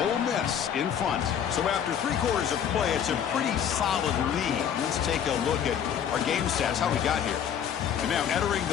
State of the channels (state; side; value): quieter; right; 8.7 dB